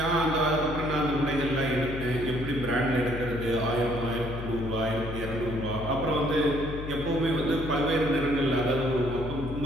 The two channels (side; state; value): left; noise; hum, 8 dB below the sound